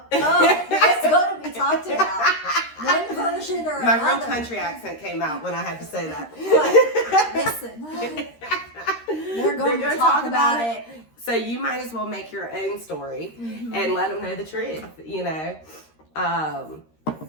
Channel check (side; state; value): right; late; 13 ms